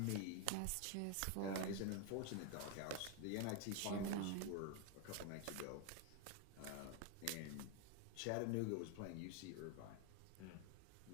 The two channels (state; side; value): different; both; correlation 0.01